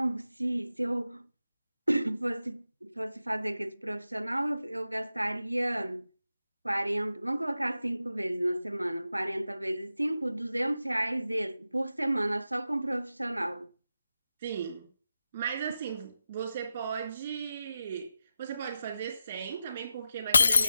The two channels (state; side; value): inverted; both; correlation -0.91